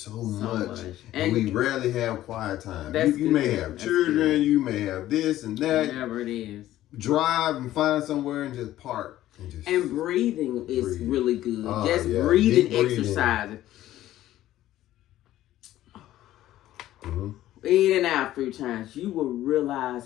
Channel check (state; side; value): quieter; right; 14.0 dB